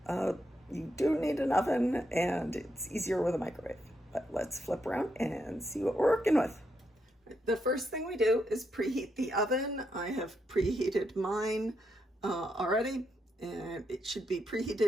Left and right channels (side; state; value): both; normal; correlation 0.81